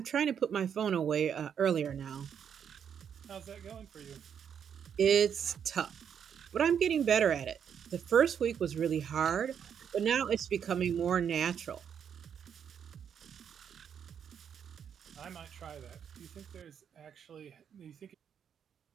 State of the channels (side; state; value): left; quieter; 8.0 dB